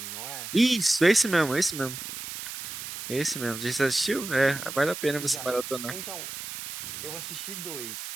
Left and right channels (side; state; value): right; noise; hiss, 8 dB below the sound